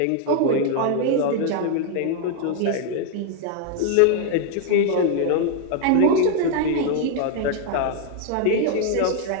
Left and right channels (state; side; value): different; both; correlation 0.00